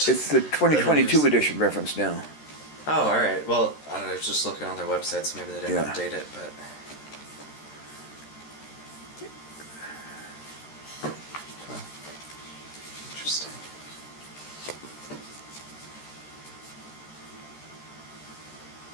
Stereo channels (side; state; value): right; late; 13 ms